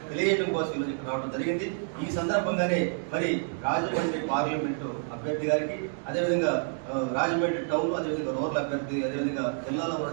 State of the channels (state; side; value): silent; left; 59 dB below the other